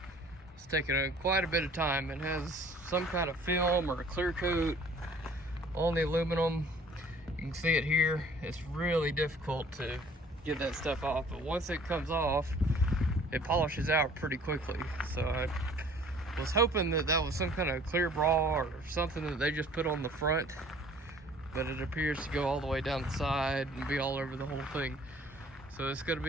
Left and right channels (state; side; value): normal; both; correlation 0.53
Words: It's taken quite a bit of time. It has some kind of film or a clear coat on the aluminum. You can see it here. It's really difficult to get that stuff off, but once it comes off, it polishes out pretty quickly. So I was hoping that was some kind of clear bra or something that they just put on the front, but it appears to go all the way down the side and be all over the whole thing. So it's going to